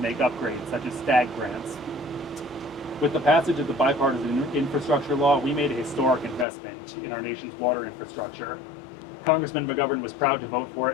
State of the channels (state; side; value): drops out; right; at 6.5 s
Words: upgrades, such as STAG grants. With the passage of the bipartisan infrastructure law, we made a historic investment in our nation's water infrastructure. Congressman McGovern was proud to vote for